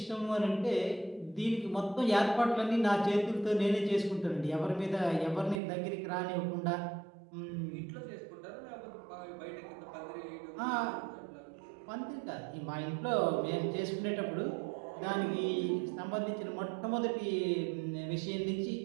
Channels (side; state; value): left; drops out; at 5.6 s